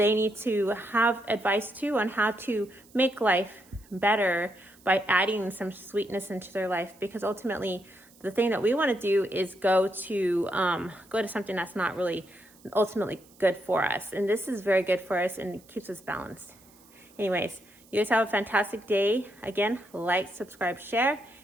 need to have advice too on how to make life better by adding some sweetness into their life, because ultimately the thing that we want to do is go to something that's not really ultimately good for us. And this is very good for us and it keeps us balanced. Anyways, you guys have a fantastic day. Again, like, subscribe, share,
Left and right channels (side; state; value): right; noise; hiss, 27 dB below the sound